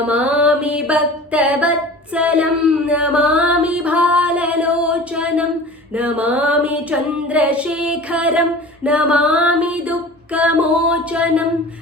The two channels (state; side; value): normal; both; correlation 0.39